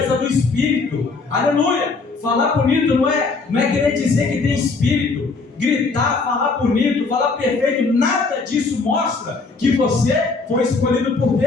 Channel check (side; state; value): right; quieter; 4.1 dB